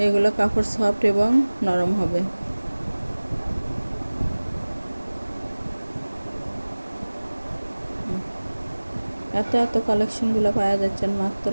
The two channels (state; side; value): inverted; both; correlation -1.00